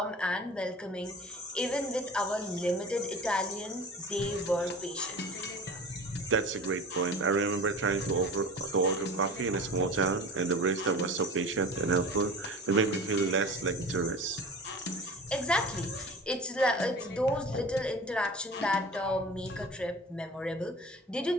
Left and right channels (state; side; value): normal; both; correlation 0.37